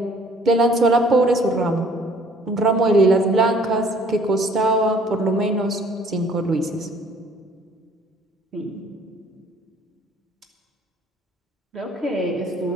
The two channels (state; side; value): normal; both; correlation 0.57